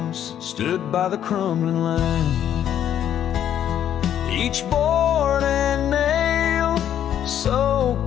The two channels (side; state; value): right; quieter; 10.2 dB